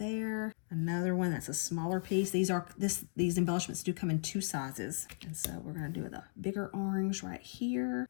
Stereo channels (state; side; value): silent; right; digital silence